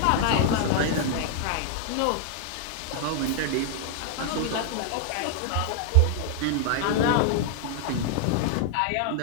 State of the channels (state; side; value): different; both; correlation 0.00